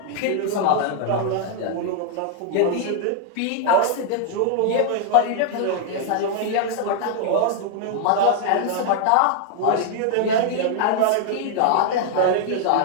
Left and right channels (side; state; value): both; different; correlation 0.00